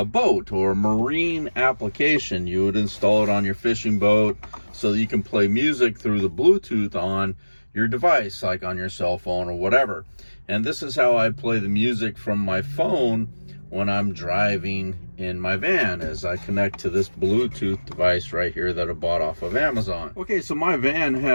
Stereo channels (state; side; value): inverted; both; correlation -1.00